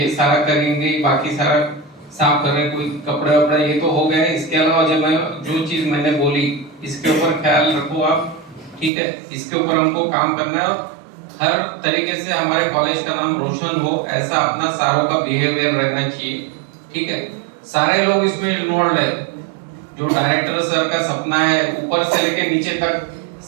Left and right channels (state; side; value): drops out; left; at 8.9 s